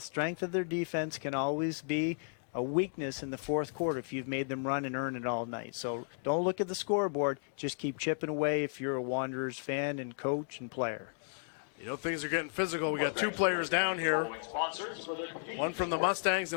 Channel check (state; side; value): silent; right; digital silence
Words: of their defense can always be a weakness in the fourth quarter if you've made them run and earn it all night. So don't look at the scoreboard. Just keep chipping away if you're a Wanderers fan and coach and player. Things are getting physical. We got 2 players down here. One from the Mustangs